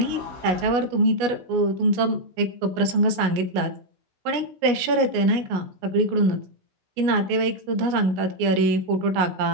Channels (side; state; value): left; late; 17 ms